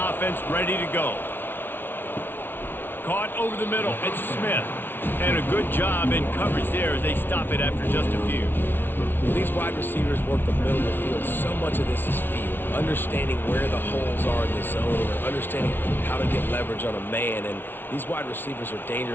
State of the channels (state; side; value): late; right; 0.10 ms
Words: ready to go. Caught over the middle, it's Smith. And a good job in coverage there as they stop it after just a few. These wide receivers work the middle of the field. So much of this is feel, understanding where the holes are in the zone, or understanding how to get leverage on a man. And these wide receivers are